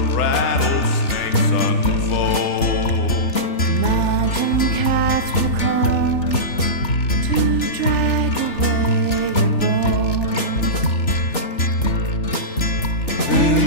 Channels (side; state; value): right; late; 3.4 ms